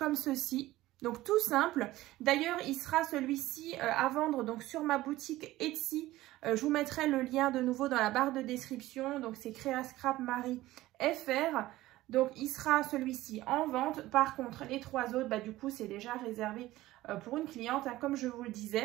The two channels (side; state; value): left; quieter; 16.7 dB